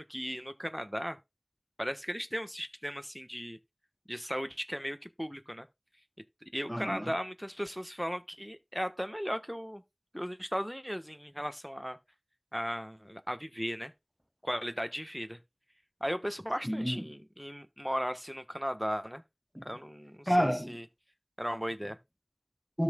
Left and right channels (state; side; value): identical; both; correlation 1.00